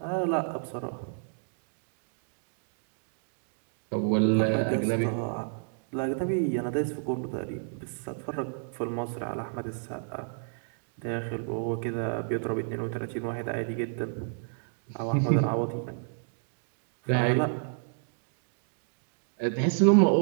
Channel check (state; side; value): silent; left; digital silence